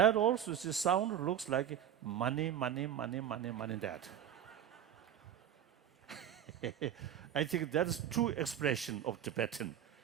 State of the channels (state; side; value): quieter; left; 9.8 dB